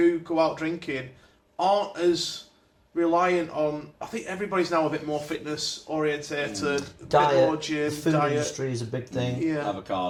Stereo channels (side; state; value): both; identical; correlation 1.00